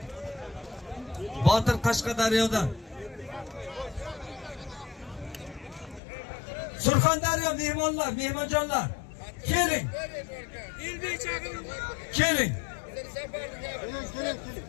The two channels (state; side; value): drops out; right; at 6.0 s